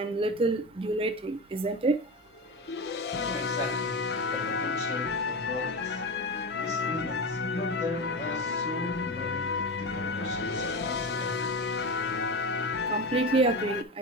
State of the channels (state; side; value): normal; both; correlation 0.22